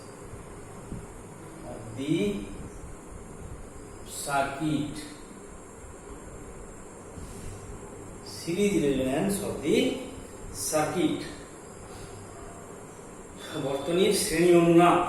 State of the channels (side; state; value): both; identical; correlation 1.00